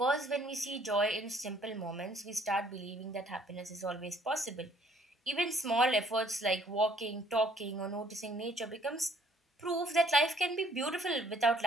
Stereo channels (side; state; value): both; normal; correlation 0.62